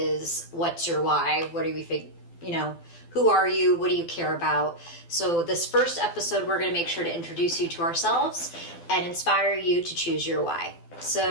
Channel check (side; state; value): right; late; 12 ms